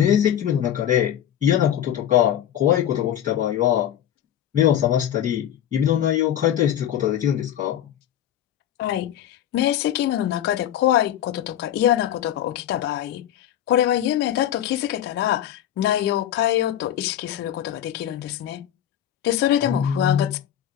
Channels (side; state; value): right; quieter; 10.9 dB